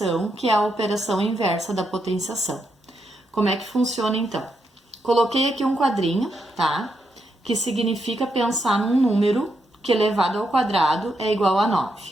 que é a operação inversa da potenciação. Como é que funciona então? Coloquei aqui um quadrinho, tá? Que significa pensar num número que elevado ao quadrado é igual a 9,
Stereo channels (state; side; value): normal; both; correlation 0.81